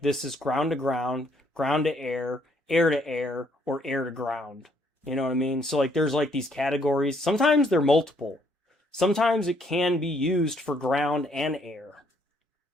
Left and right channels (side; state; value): both; normal; correlation 0.68